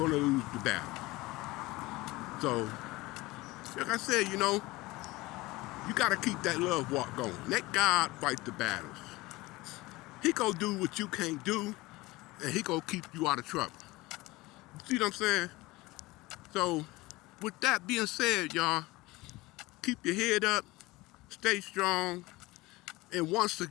to lose the battle. So, like I said, you got to keep that love walk going. Let God fight the battles. He gonna do what you can't do, and he gonna keep you out of trouble. See what I'm saying? So, with that being said, y'all, keep your head up, stay strong, and once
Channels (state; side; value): quieter; right; 20.8 dB